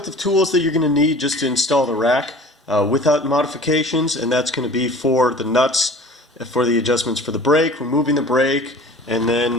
the tools that you're going to need just to install the rack without modifications, and that's going to be for the nuts, for the adjustments for the brake, removing the brake, and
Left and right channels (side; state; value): both; normal; correlation 0.43